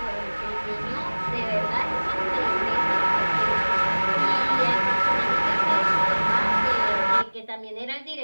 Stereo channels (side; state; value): both; inverted; correlation -1.00